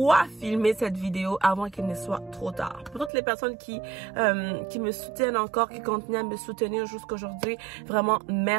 filmer cette vidéo avant qu'il ne soit trop tard. Pour toutes les personnes qui me soutiennent encore, qui continuent à me soutenir jusqu'aujourd'hui, vraiment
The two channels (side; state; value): left; drops out; at 3.1 s